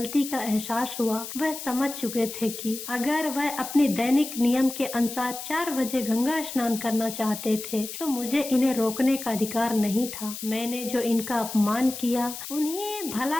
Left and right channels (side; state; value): left; noise; hiss, 9 dB below the sound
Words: का एहसास हुआ। वह समझ चुके थे कि अगर वह अपनी दैनिक नियम के अनुसार 4 बजे गंगा स्नान करना चाहते थे तो मुझे इन्हें रोकने का अधिकार नहीं था। मैंने जो इनका अपमान किया, उन्हें